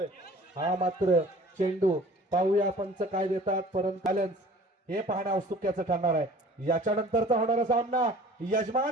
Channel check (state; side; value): normal; both; correlation 0.47